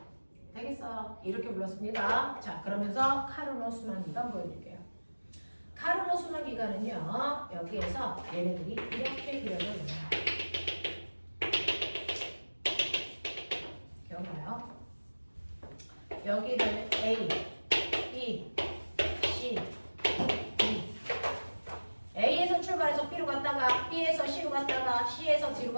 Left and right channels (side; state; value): both; inverted; correlation -1.00